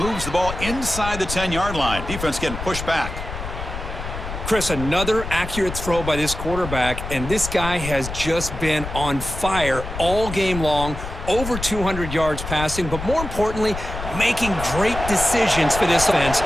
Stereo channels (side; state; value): left; noise; rumble, 8 dB below the sound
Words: the ball inside the 10-yard line. Defense getting pushed back. Chris, another accurate throw by this quarterback, and this guy has just been on fire all game long, over 200 yards passing, but more importantly, making great decisions for this offense